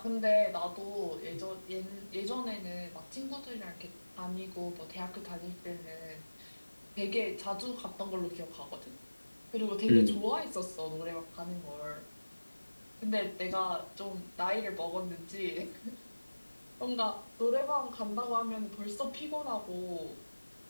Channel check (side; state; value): both; inverted; correlation -1.00